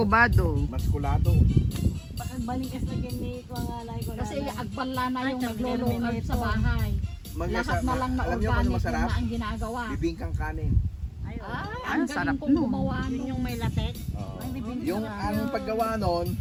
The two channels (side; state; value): both; identical; correlation 1.00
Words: maskulado. Bakit balikas na gini ko ang alay ko. Kasi agpala na yung Ay, nagluluto sa terminator. bahay. Lahat na lang na Alam niyo kung ano organic masarap? na ang ginagawa. Bibingkang kanin. Ay, Ay, ang sarap galing kong nun. gumawa Yun nun. yung may latex. Oo. Ay, bibingkang Yung ang paggawa nun,